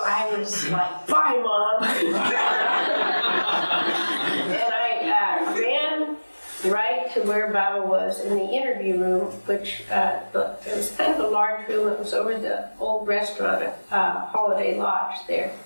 I was like, "Bye, Mom." And I ran right to where Baba was in the interview room, which it was kind of a large room. It was over the old restaurant at Holiday Lodge there.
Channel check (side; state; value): both; inverted; correlation -1.00